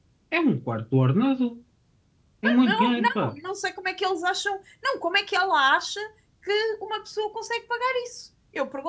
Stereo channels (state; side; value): identical; both; correlation 1.00